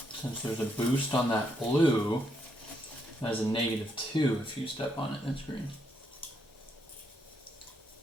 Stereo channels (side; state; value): both; normal; correlation 0.76